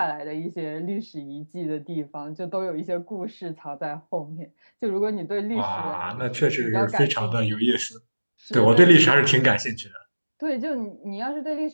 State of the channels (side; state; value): both; inverted; correlation -1.00